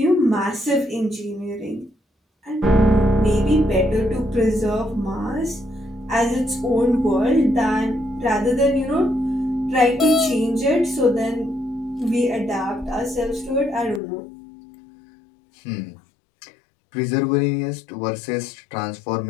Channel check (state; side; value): drops out; right; at 14.0 s